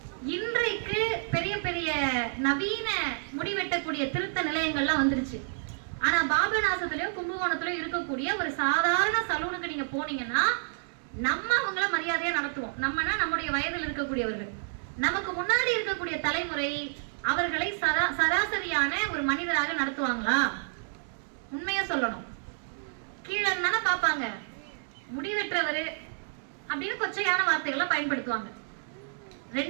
இன்றைக்கு பெரிய பெரிய நவீன முடி வெட்டக்கூடிய திருத்த நிலையங்கள்லாம் வந்துருச்சு. ஆனா பாபநாசத்திலயோ கும்பகோணத்திலயோ இருக்கக்கூடிய ஒரு சாதாரண சலூனுக்கு நீங்க போனீங்கன்னா நம்ம அவங்கள மரியாதையா நடத்துவோம். நம்மனா நம்முடைய வயதில் இருக்கக்கூடியவர்கள், நமக்கு முன்னாடி இருக்கக்கூடிய தலைமுறை அவர்களை சராசரியான ஒரு மனிதராக நடத்துவாங்களா? உண்மையா சொல்லணும், கீழே தானே பார்ப்பாங்க. முடி வெற்றவர் அப்படின்னு கொச்சையான வார்த்தைகளை பயன்படுத்துவாங்க.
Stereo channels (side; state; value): left; silent; digital silence